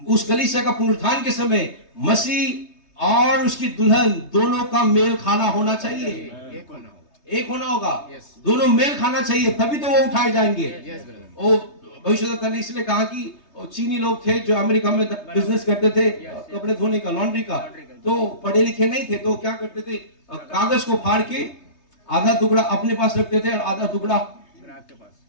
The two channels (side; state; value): right; late; 3.2 ms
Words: उस कलीसिया का पुनरुत्थान के समय मसीह और उसकी दुल्हन दोनों का मेल खाना होना चाहिए, एक होना होगा। एक होना होगा। Yes. दोनों मेल खाना चाहिए, तभी तो वो उठाए जाएंगे। Yes, brother. वो भविष्यवक्ता ने इसलिए कहा कि वो चीनी लोग थे जो अमेरिका में बिजनेस करते थे, कपड़े धोने का, लॉन्ड्री का, तो पढ़े लिखे नहीं थे, तो क्या करते थे, कागज को फाड़ के आधा टुकड़ा अपने पास रखते थे और आधा टुकड़ा